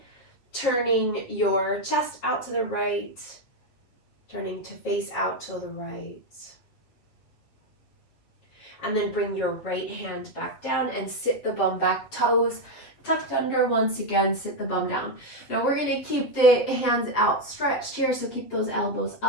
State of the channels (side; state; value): right; late; 8.0 ms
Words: turning your chest out to the right, turning to face out to the right. And then bring your right hand back down and sit the bum back, toes tucked under once again, sit the bum down. Now we're going to keep the hands outstretched here, so keep those elbows